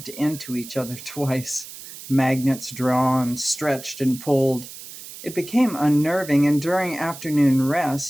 into each other twice. Magnets drawn, stretched, and pulled. It became unnerving, and during afternoon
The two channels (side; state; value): right; noise; hiss, 14 dB below the sound